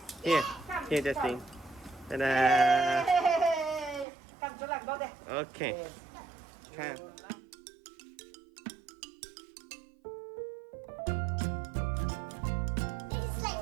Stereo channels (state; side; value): drops out; left; at 4.0 s